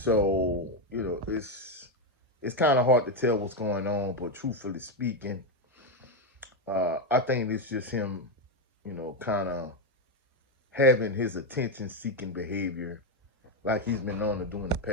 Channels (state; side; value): normal; both; correlation 0.07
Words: it's kind of hard to tell what's going on, but truthfully speaking, I think it's just him, kind of having his attention-seeking behavior like he's been known to do in the